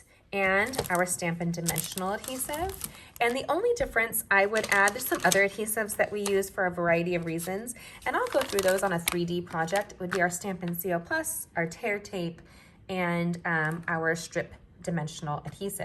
and our Stampin' Dimensional Adhesive. And the only difference I would add, there's some other adhesives that we use for a variety of reasons, and I'll go through those on a 3D project. It would be our Stampin' Seal Plus, our tear tape, and our strip dimensional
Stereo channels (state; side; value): identical; both; correlation 1.00